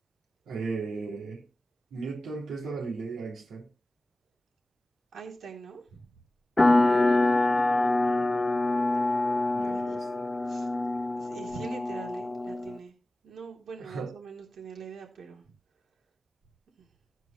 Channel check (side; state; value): both; normal; correlation 0.97